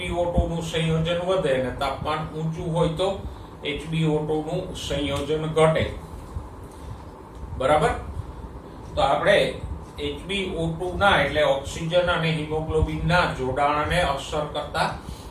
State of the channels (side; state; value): both; identical; correlation 1.00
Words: નું સંયોજન વધે અને તાપમાન ઊંચું હોય તો HbO2 નું સંયોજન ઘટે. બરાબર? તો આપણે HbO2 ના એટલે ઓક્સિજન અને હિમોગ્લોબિન ના જોડાણને અસર કરતા